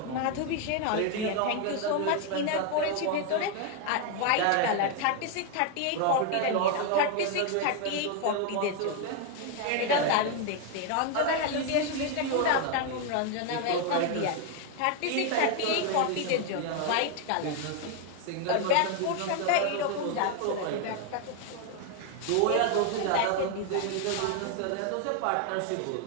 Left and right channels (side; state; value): both; different; correlation 0.01